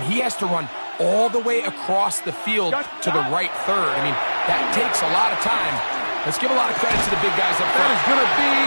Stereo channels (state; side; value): inverted; both; correlation -1.00